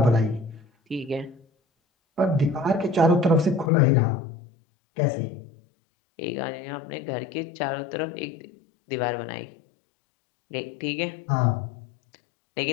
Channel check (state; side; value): drops out; right; at 3.7 s